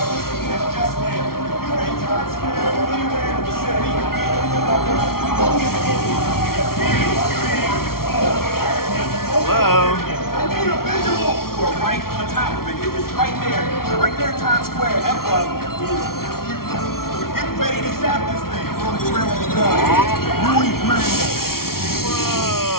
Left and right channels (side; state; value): right; late; 0.93 ms